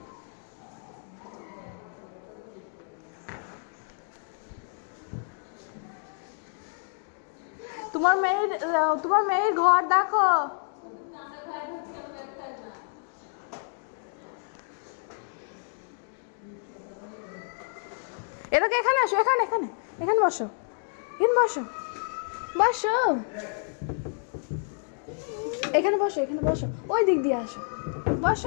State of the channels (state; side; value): silent; right; 58 dB below the other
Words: তোমার মেয়ের ঘর দেখো। এটাকে এখানে আসো, এখানে এখানে এখানে বসো, এখানে বসো বসো, এখানে বসো, এখানে বসো, ওই দিক দিয়ে আসো,